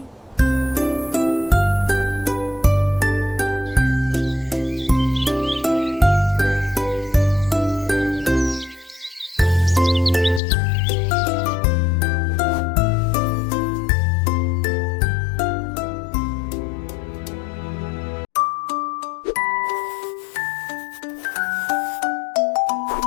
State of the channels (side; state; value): right; drops out; at 10.4 s